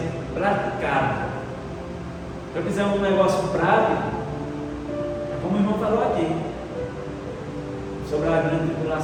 praticado. Se eu quiser um negócio prático, é como o irmão falou aqui, sobre a grande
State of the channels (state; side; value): identical; both; correlation 1.00